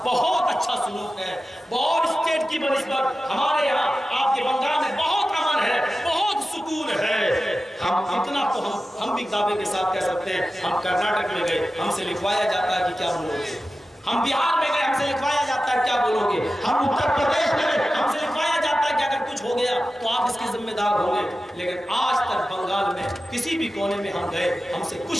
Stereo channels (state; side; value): normal; both; correlation 0.94